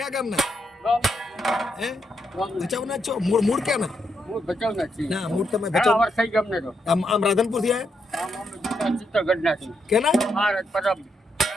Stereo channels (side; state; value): both; normal; correlation 0.80